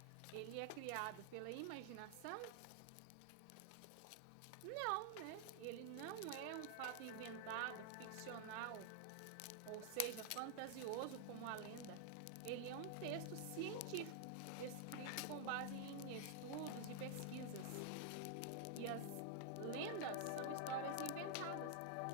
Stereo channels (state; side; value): different; both; correlation 0.00